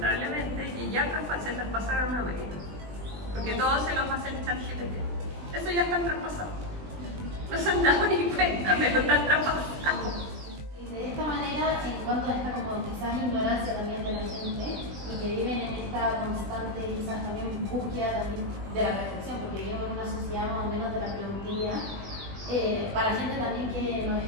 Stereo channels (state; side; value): late; left; 20 ms